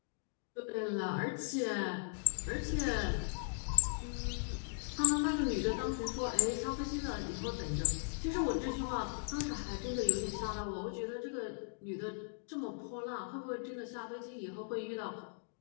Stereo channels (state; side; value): silent; right; digital silence